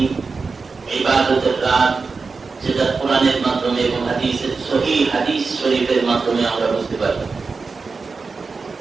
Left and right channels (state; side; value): quieter; left; 4.5 dB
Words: ইবাদতের রাত, যেটা কোরআনের মাধ্যমে এবং হাদিসের সহিহ হাদিস শরীফের মাধ্যমে আমরা বুঝতে পারি।